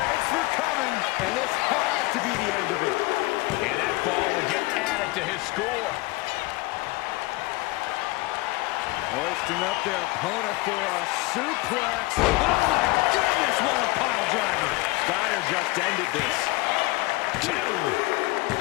for coming. And this has to be the end of it. And that fall will get added to his score. Hoisting up their opponent for a suplex. Oh, my goodness, what a pile driver. Steiner just ended this. 2.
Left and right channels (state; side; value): quieter; right; 22.1 dB